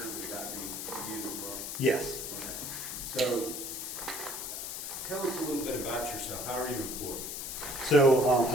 would that be you as well? Yes. Okay. So, Tell us a little bit about yourself. How are you employed? So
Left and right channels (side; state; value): left; noise; hiss, 5 dB below the sound